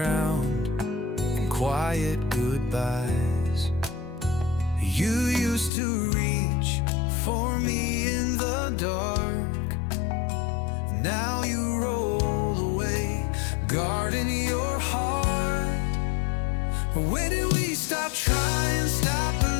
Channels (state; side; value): drops out; right; at 5.7 s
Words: in quiet goodbyes. You used to reach for me in the dark, now you roll away, guarding your heart. When did we stop trying, stop